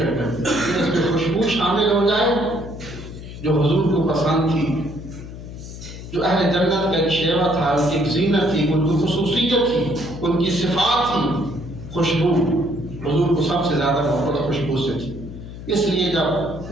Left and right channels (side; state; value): left; noise; hum, 12 dB below the sound